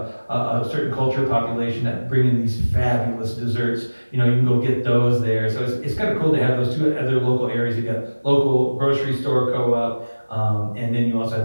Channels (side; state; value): both; inverted; correlation -1.00